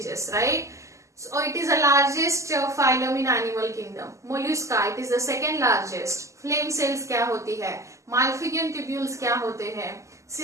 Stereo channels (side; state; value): left; late; 0.15 ms